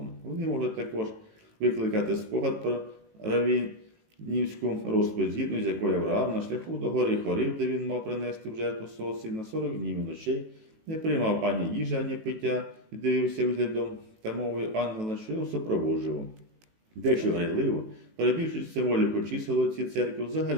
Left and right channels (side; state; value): left; late; 18 ms